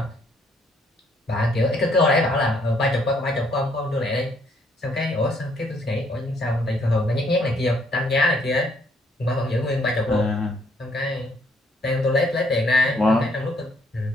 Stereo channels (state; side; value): normal; both; correlation 0.68